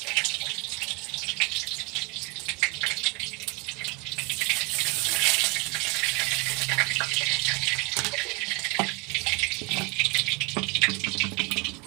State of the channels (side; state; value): left; quieter; 29.0 dB